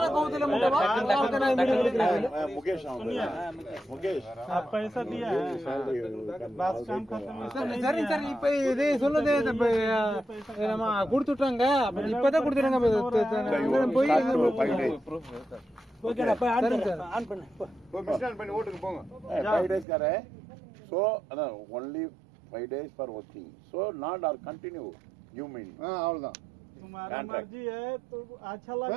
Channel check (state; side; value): drops out; left; at 19.9 s